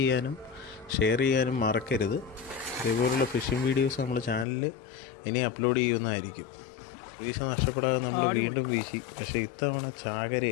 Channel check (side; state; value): right; drops out; at 4.5 s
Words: ഷെയർ ചെയ്യാനും മറക്കരുത്. ഇതേപോലുള്ള ഫിഷിംഗ് വീഡിയോസ് നമ്മൾ ചാനലിൽ ഇനി അപ്ലോഡ് ചെയ്യുന്നതായിരിക്കും. വീശ നഷ്ടപ്പെടാതെ നമ്മൾ വീണ്ടും വീശി. പക്ഷേ ഇത്തവണ